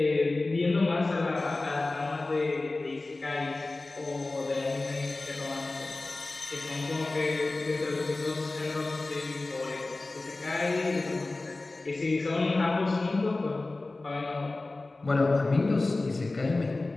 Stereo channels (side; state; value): right; quieter; 3.2 dB